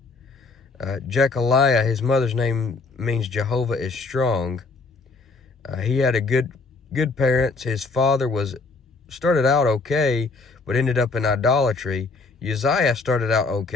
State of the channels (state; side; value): quieter; right; 3.9 dB